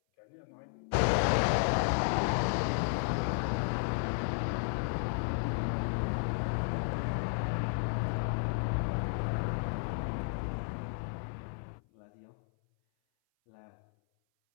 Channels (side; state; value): right; silent; 56 dB below the other